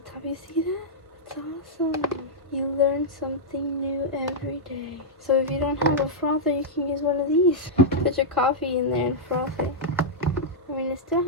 You see that? It's awesome. You learn something new every day. So if you don't have a frother, you can use one of these. Put your coffee in there and froth it. I mean, it still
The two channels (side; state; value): both; normal; correlation -0.09